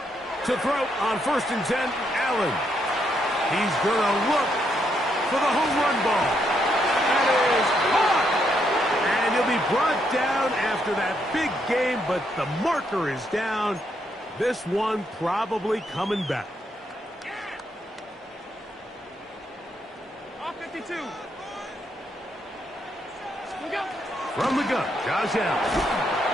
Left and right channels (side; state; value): both; normal; correlation 0.77